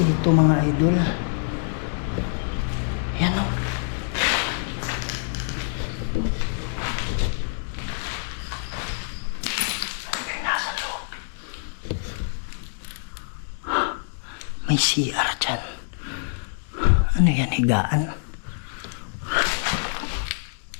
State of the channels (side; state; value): right; silent; digital silence